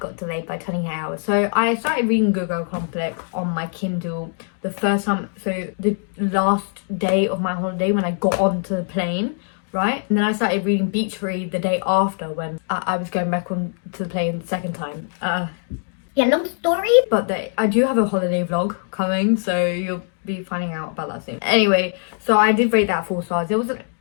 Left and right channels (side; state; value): right; silent; 55 dB below the other